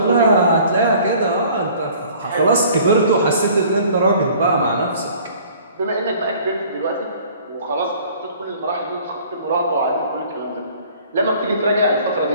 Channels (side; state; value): both; inverted; correlation -0.52